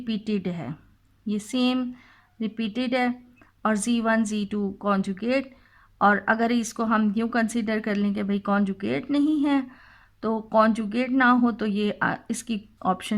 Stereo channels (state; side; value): identical; both; correlation 1.00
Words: है, ये सेम रिपीटेड है और Z1 Z2 कॉन्जुगेट। और अगर इसको हम यूँ कंसीडर कर लें कि भाई कॉन्जुगेट नहीं है, तो कॉन्जुगेट ना हो तो ये इसकी